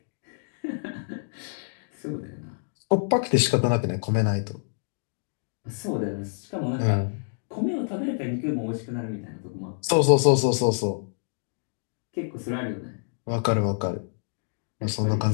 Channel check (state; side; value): silent; right; digital silence